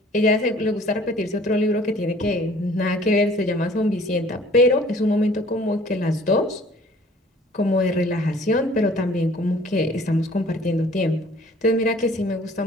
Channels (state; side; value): normal; both; correlation 0.52